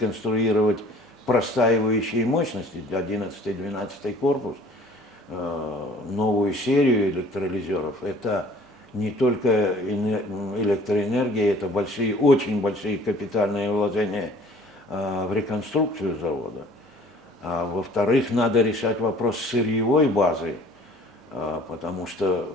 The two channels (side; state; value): both; normal; correlation 0.52